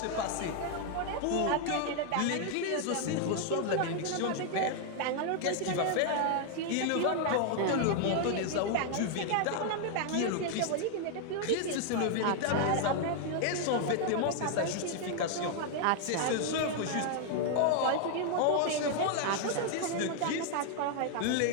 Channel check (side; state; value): both; different; correlation 0.00